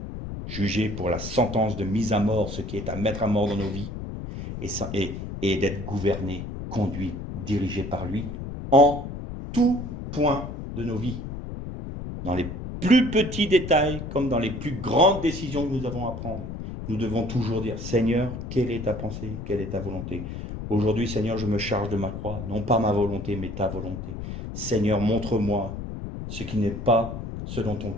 Juger pour la sentence de mise à mort, ce qui est à mettre à mort dans nos vies, et d'être gouverné, conduit, dirigé par lui, en tout point de nos vies. Dans les plus petits détails, comme dans les plus grandes décisions que nous avons à prendre, nous devons toujours dire, Seigneur, quelle est ta pensée, quelle est ta volonté? Aujourd'hui, Seigneur, je me charge de ma croix, non pas ma volonté, mais ta volonté. Seigneur, montre-moi ce qui n'est pas selon ton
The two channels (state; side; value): noise; left; rumble, 7 dB below the sound